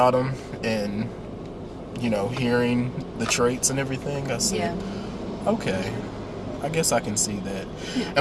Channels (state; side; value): identical; both; correlation 1.00